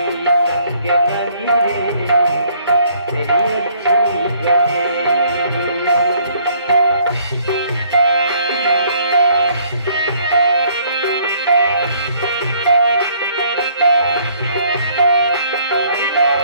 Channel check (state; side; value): inverted; both; correlation -0.62